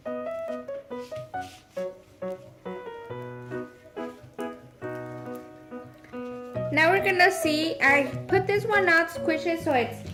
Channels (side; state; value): both; identical; correlation 1.00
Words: Now we're gonna see, I put this one out, squish it so